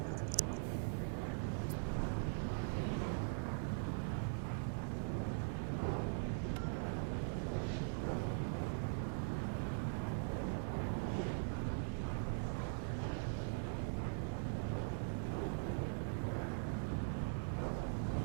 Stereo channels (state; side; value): silent; left; digital silence